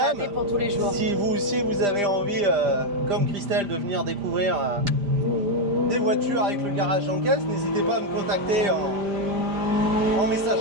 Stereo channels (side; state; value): left; late; 5.0 ms